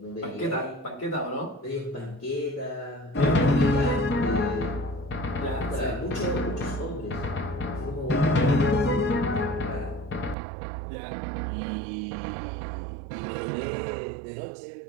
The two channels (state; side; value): drops out; left; at 10.4 s